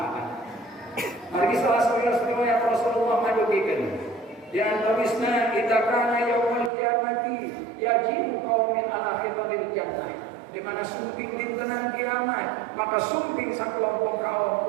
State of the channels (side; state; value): left; drops out; at 6.7 s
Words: Margi salah satu riwayat Rasulullah madugikeun di antawisna idza kana yaumul qiyamati yajibu qaumin ala khitaril jannah di mana sumping dintenan kiamat maka sumping sakelompok kaum